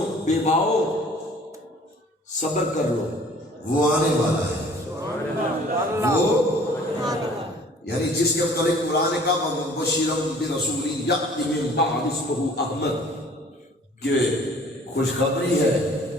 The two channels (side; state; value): both; normal; correlation 0.52